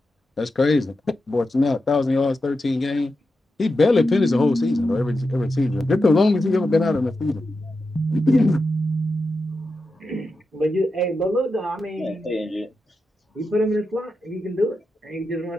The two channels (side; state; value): both; normal; correlation 0.89